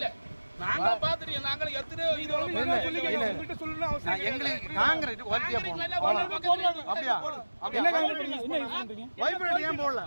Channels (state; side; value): inverted; both; correlation -1.00